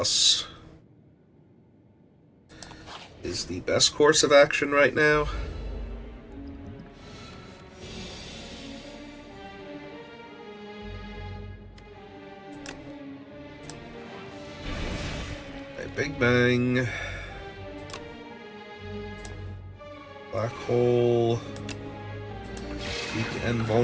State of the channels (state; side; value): identical; both; correlation 1.00